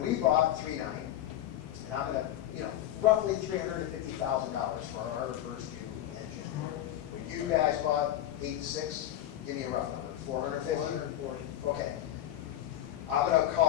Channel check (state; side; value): quieter; right; 12.4 dB